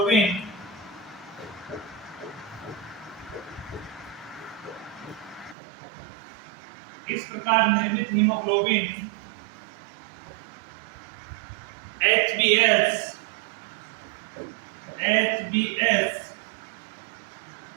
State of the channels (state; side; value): drops out; left; at 5.6 s